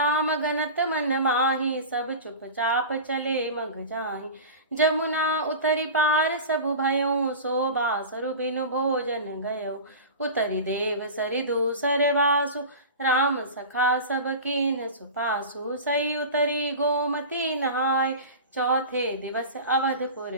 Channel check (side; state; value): both; inverted; correlation -0.32